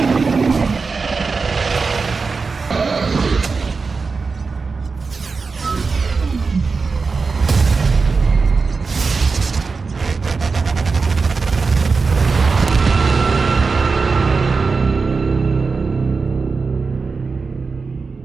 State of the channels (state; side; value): quieter; left; 4.6 dB